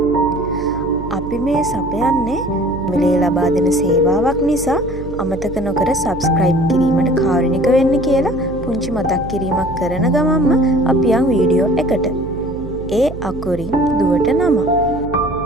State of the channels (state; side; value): noise; right; hum, 11 dB below the sound